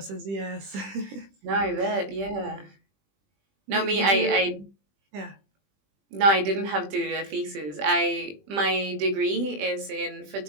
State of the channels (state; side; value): late; left; 20 ms